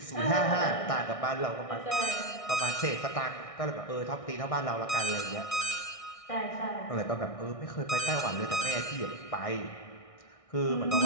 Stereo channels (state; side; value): late; right; 1.6 ms